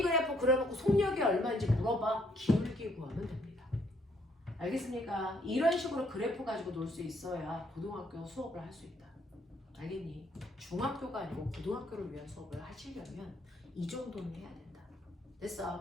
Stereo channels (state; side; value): normal; both; correlation 0.68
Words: 그래프 그려놓고 속력이 얼마인지 물어봐. 기울기 구하면 됩니다. 알겠습니까? 이런 식으로 그래프 가지고 놀 수 있어야 고등학교 수업을 할 수 있다. 알겠니? 중학교가 아니고 고등학교를 위한 수업을 하시려면 이 정도는 해야 된다.